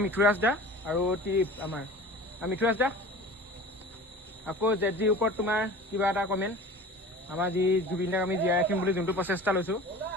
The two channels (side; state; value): both; normal; correlation 0.39